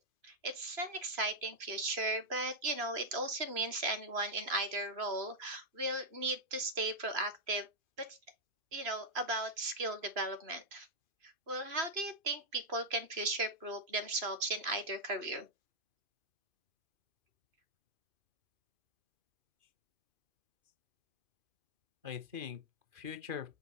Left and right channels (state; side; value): late; left; 2.5 ms